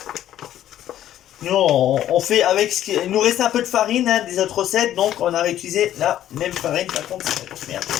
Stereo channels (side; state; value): right; quieter; 12.0 dB